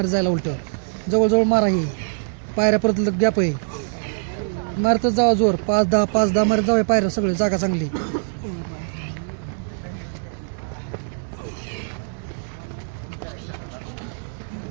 जायला. उलट जवळ मारा. ही पायऱ्या परत गॅप आहे. मारतच जावा जोर. 5-10 मारत जाऊ पायऱ्या. सगळे जागा चांगली.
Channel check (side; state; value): left; silent; digital silence